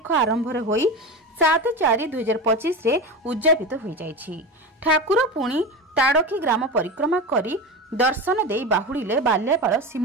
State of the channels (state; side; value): normal; both; correlation 0.24